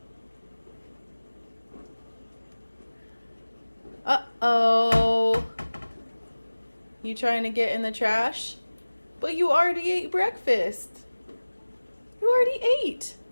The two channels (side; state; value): both; inverted; correlation -1.00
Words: Uh-oh. You trying to get in the trash? But you already ate breakfast. You already ate.